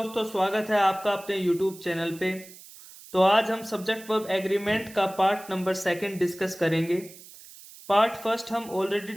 स्वागत है आपका अपने यूट्यूब चैनल पे। तो आज हम सब्जेक्ट वर्ब एग्रीमेंट का पार्ट नंबर सेकंड डिस्कस करेंगे। पार्ट फर्स्ट हम ऑलरेडी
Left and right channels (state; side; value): noise; right; hiss, 19 dB below the sound